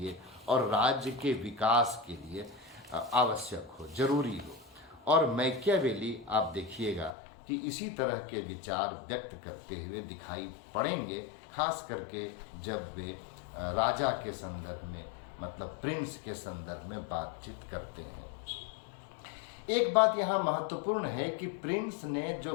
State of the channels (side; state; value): right; drops out; at 7.1 s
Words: और राज्य के विकास के लिए आवश्यक हो, जरूरी हो। और मैकियावेली आप देखिएगा कि इसी तरह के विचार व्यक्त करते हुए दिखाई पड़ेंगे, खास करके जब वे राजा के संदर्भ में, मतलब प्रिंस के संदर्भ में बातचीत करते हैं। एक बात यहाँ महत्वपूर्ण है कि प्रिंस ने जो